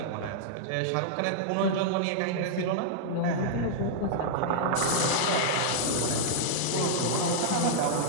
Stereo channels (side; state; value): both; different; correlation -0.02